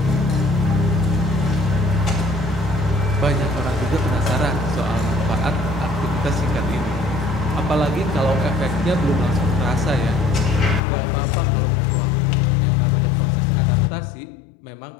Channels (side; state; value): right; drops out; at 10.8 s